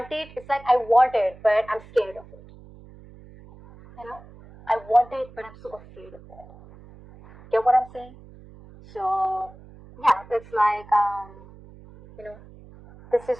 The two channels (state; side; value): noise; right; hum, 21 dB below the sound